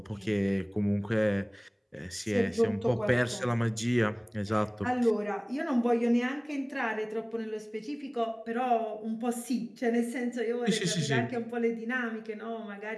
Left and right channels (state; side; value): identical; both; correlation 1.00